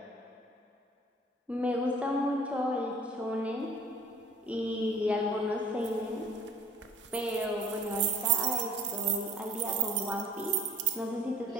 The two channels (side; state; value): both; normal; correlation 0.50